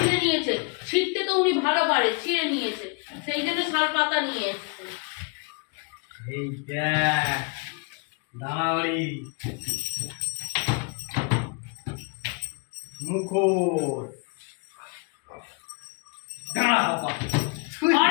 নিয়েছে। ছিঁড়তে তো উনি ভালো পারে, ছিঁড়ে নিয়েছে, সেই জন্য শাল পাতা নিয়ে এসছে। এই দেখ দাঁড়াওয়ারি মুখোশ, দাঁড়া বাবা,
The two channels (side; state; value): right; quieter; 33.4 dB